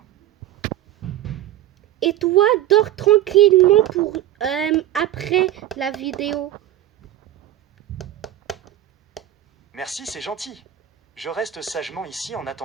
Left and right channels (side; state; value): left; quieter; 12.9 dB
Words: Et toi, dors tranquillement pour après la vidéo. Merci, c'est gentil. Je reste sagement ici en